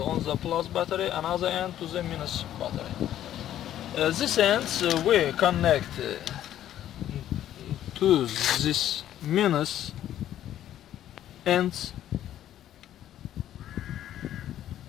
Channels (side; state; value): right; quieter; 11.8 dB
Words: plus battery and other end to the minus battery. This ends we connect to this minus ends